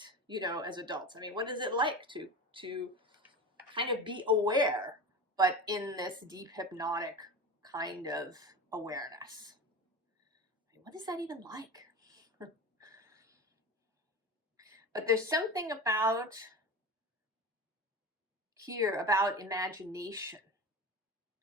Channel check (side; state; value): both; normal; correlation 0.28